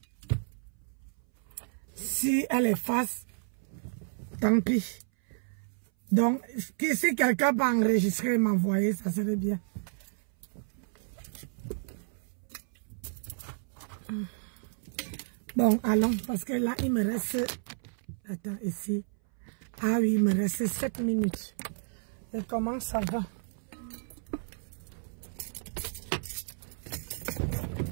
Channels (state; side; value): silent; left; 57 dB below the other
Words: Si elle efface, tant pis. Donc, si quelqu'un peut enregistrer et m'envoyer, ça serait bien. Bon, allons, parce que là, il me reste... Attends, ici. Ah oui, il me reste 7 minutes. Et comment ça va?